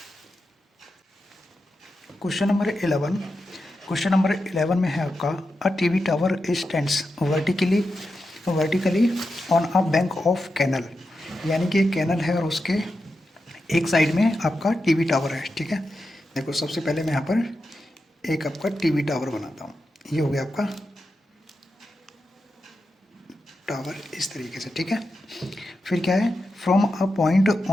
क्वेश्चन नंबर 11, क्वेश्चन नंबर 11 में है आपका a TV tower stands vertically on a bank of canal, यानी कि एक कैनल है और उसके एक साइड में आपका टीवी टावर है, ठीक है। देखो सबसे पहले मैं यहाँ पर एक आपका टीवी टावर बनाता हूँ, ये हो गया आपका टावर इस तरीके से, ठीक है। फिर क्या है from a point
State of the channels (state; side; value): normal; both; correlation 0.89